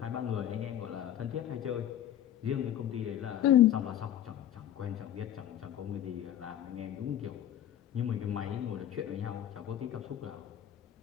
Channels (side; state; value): right; quieter; 11.2 dB